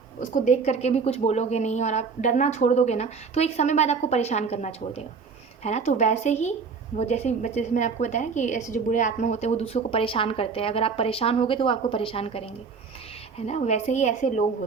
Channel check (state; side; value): quieter; left; 5.3 dB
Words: उसको देख करके भी कुछ बोलोगे नहीं और आप डरना छोड़ दोगे ना, तो एक समय बाद आपको परेशान करना छोड़ देगा, है ना। तो वैसे ही वो जैसे मैंने आपको बताया कि ऐसे जो बुरे आत्मा होते हैं वो दूसरों को परेशान करते हैं, अगर आप परेशान होगे तो वो आपको परेशान करेंगे, है ना। वैसे ही ऐसे लोग